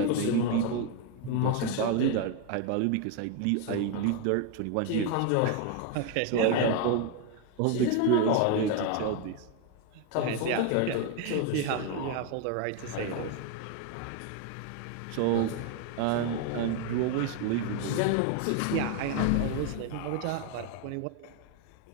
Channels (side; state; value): both; different; correlation 0.01